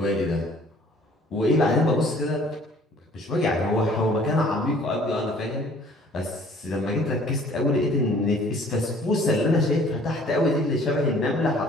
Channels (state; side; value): normal; both; correlation 0.55